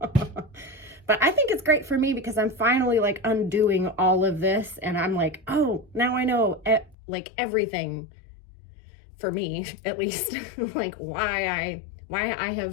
I think it's great for me, because I'm finally, like, undoing all of this, and I'm like, oh, now I know, everything, for me, at least, like, why I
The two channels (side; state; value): right; drops out; at 7.0 s